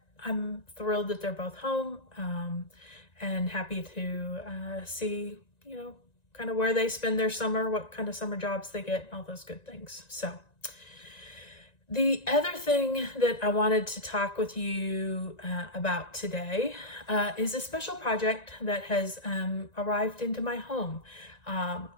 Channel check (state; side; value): late; right; 1.9 ms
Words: I'm thrilled that they're both home and happy to see, kind of where they spend their summer, what kind of summer jobs they get, all those good things. So the other thing that I wanted to talk with you about today is a special project that has arrived into my home.